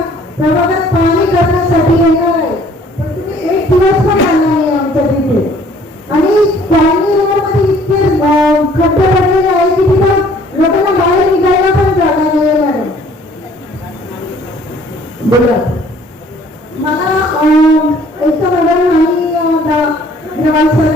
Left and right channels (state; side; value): normal; both; correlation 0.57